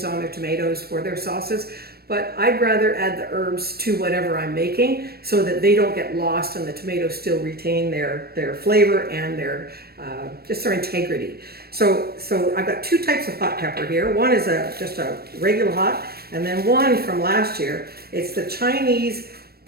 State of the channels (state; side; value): late; left; 0.45 ms